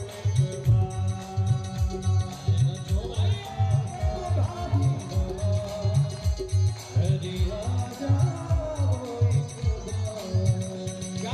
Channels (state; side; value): identical; both; correlation 1.00